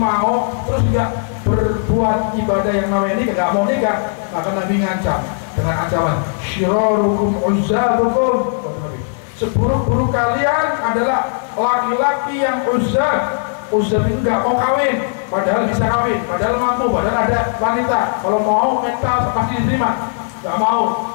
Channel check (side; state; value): right; silent; 65 dB below the other